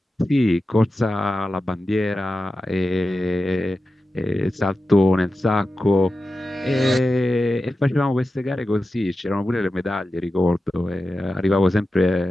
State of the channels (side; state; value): both; normal; correlation 0.93